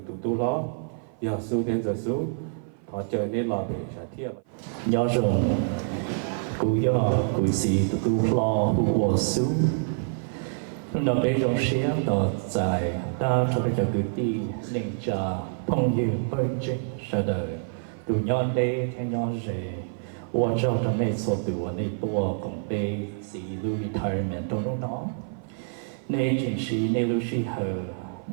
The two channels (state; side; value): silent; left; 55 dB below the other